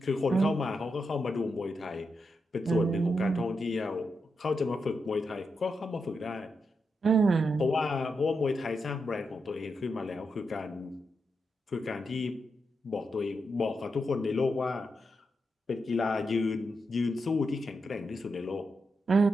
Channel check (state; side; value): normal; both; correlation 0.85